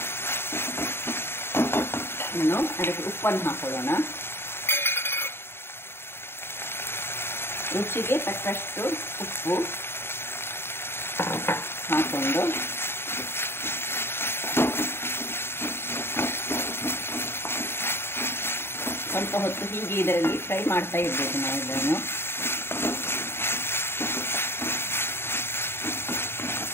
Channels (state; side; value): late; right; 0.11 ms